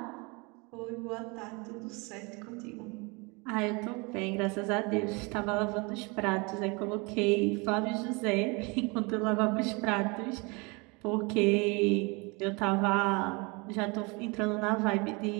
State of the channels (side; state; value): left; quieter; 28.6 dB